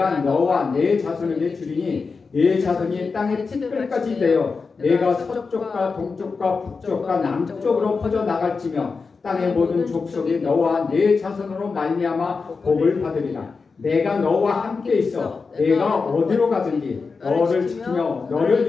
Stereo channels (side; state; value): right; quieter; 4.7 dB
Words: 너와 내 자손에게 주리니 내 자손이 땅의 티끌까지 되어 내가 서쪽과 동쪽과 북쪽과 남쪽으로 퍼져나갈지며 땅의 모든 족속이 너와 내 자손으로 말미암아 복을 받으리라. 내가 너와 함께 있어 내가 어디로 가든지 너를 지키며